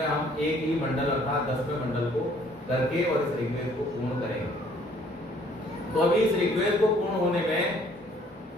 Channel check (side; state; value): both; normal; correlation 0.60